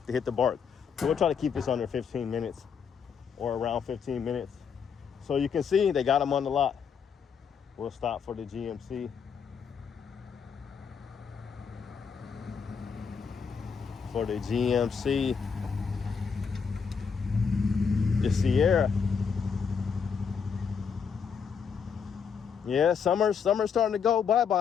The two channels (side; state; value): right; quieter; 6.4 dB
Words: to hit the bark. So we'll try to keep this under 15 minutes or around 15 minutes. So you can see they got them on the lot. We'll stop for the GMC. For the GMC, the Sierra. Yeah, summer's starting to go